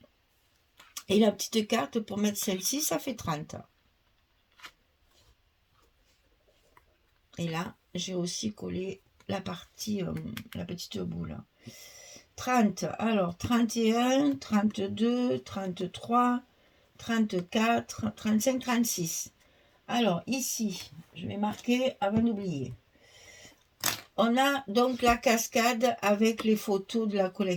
Et la petite carte pour mettre celle-ci, ça fait 30. Et là, j'ai aussi collé la partie, la petite boule. 30, alors 31, 32, 33, 34, 35, 36. Alors ici, je vais marquer avant d'oublier. On a donc la cascade avec les photos de la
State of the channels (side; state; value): both; identical; correlation 1.00